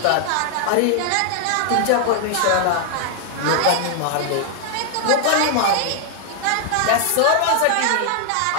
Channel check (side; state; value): both; different; correlation 0.00